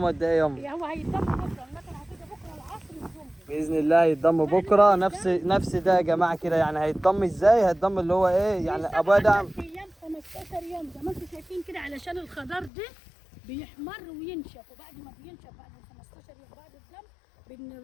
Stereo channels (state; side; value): drops out; right; at 12.7 s